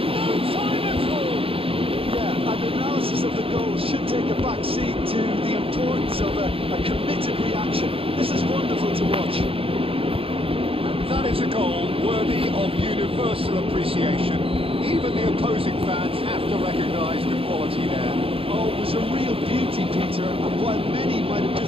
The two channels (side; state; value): left; late; 0.27 ms